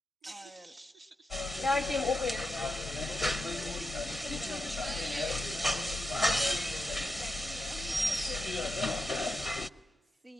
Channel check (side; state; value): both; normal; correlation 0.87